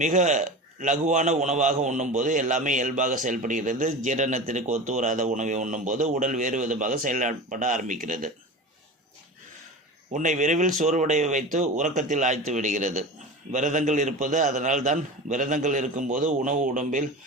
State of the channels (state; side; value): normal; both; correlation 0.31